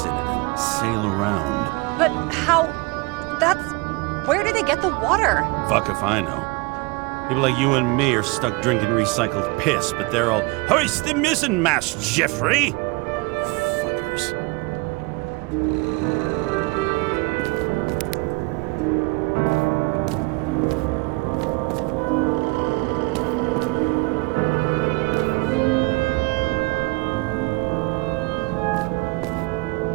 in it and sail around. But how... That's... Where do they get the water? Fuck if I know. People like you and me are stuck drinking recycled piss, but they're all, "Hoist the mizzenmast, Jeffrey!" Fuckers.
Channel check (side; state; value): left; quieter; 25.9 dB